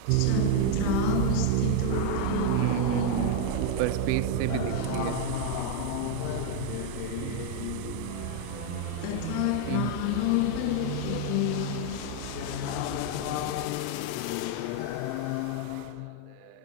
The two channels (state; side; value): different; both; correlation 0.00